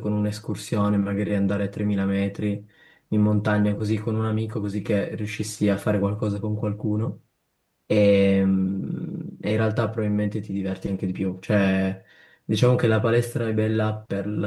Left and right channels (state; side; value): identical; both; correlation 1.00